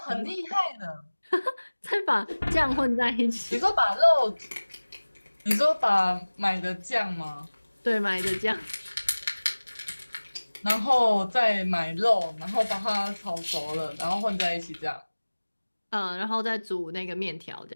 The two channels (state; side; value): inverted; both; correlation -1.00